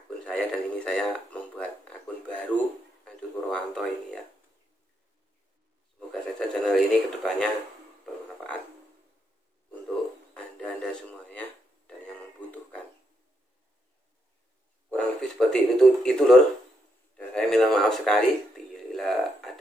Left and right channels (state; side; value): normal; both; correlation 0.79